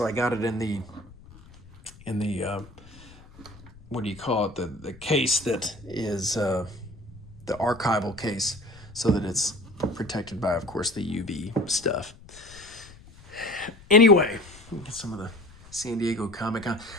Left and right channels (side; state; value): left; noise; rumble, 21 dB below the sound